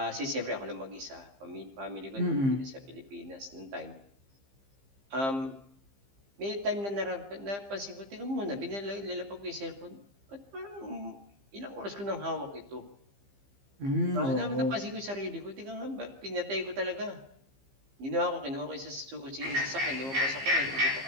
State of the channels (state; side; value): late; left; 15 ms